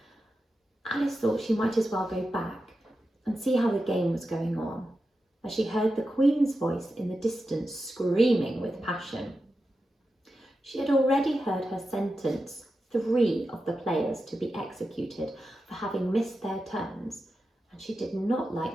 Alice thought she might as well go back and see how the game was going on, as she heard the Queen's voice in the distance screaming with passion. She had already heard her sentence 3 of the players to be executed for having missed their turns, and she did not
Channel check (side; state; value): both; normal; correlation 0.90